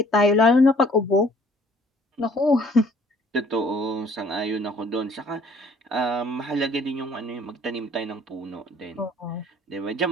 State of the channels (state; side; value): normal; both; correlation 0.58